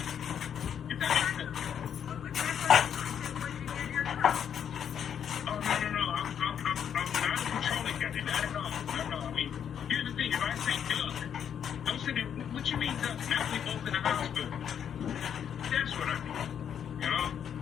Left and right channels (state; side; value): quieter; right; 8.5 dB